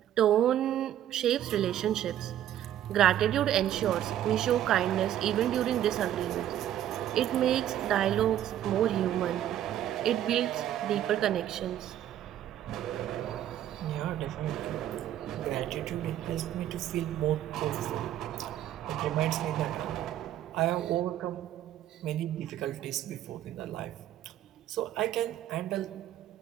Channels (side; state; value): left; quieter; 11.6 dB